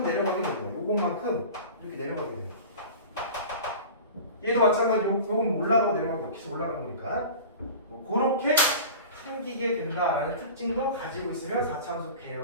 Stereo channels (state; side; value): inverted; both; correlation -0.37